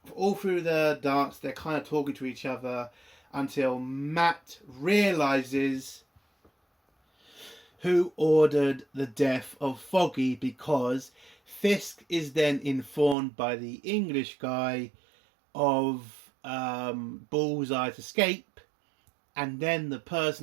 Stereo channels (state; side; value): drops out; left; at 13.2 s